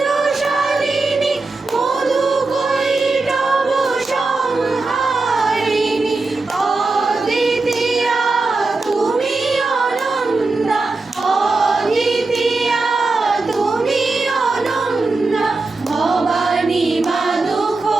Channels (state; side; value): quieter; left; 3.5 dB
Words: মধুকৈটভ সংহারিণী অদ্বিতীয়া তুমি অনন্তা অদ্বিতীয়া তুমি অনন্তা ভবানী মা